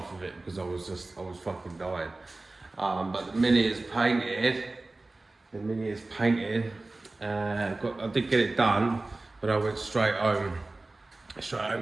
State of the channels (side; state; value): left; quieter; 3.1 dB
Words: of it because I was fucking dying. But the Mini is painted. The Mini is painted. I did get it done, but I went straight home.